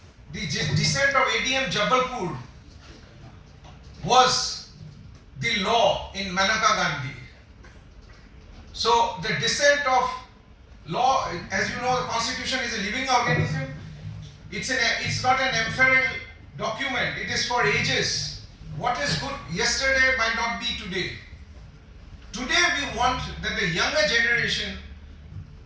the dissent of ADM Jabalpur was the law in Maneka Gandhi. So the dissent of law, as you know, the Constitution is a living organism. It's not an ephemeral document. It is for ages. What is good yesterday might not be today. Today we want that the younger generation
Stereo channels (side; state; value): both; identical; correlation 1.00